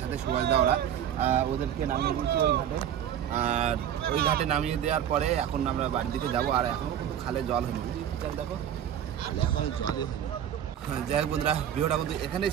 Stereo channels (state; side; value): quieter; left; 9.9 dB